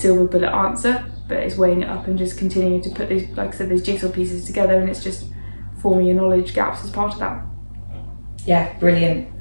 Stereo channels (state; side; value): inverted; both; correlation -1.00